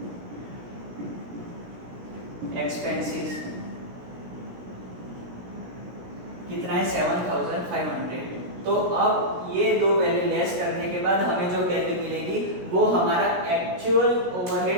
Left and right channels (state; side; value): late; left; 17 ms